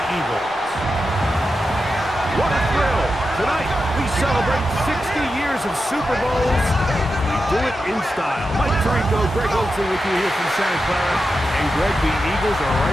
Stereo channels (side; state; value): both; normal; correlation 0.89